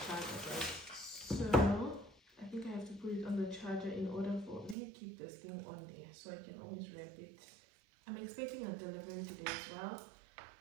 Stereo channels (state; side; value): drops out; left; at 4.8 s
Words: charger, guys. So I think I have to put it on the charger in order for, let me keep this thing on there so I can always wrap it. I'm expecting a delivery today as well